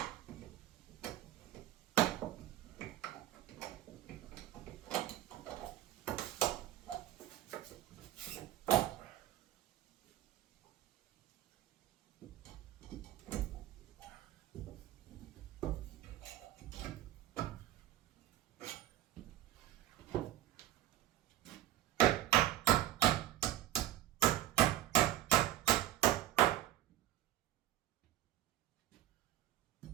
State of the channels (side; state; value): left; quieter; 13.4 dB